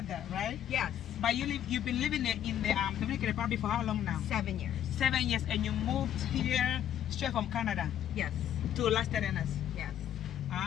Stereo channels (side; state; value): right; quieter; 10.6 dB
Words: right? Yes. But you've been living in the Dominican Republic for how long now? 7 years. 7 years, and you moved here straight from Canada Yes. to Las Terrenas. Yes.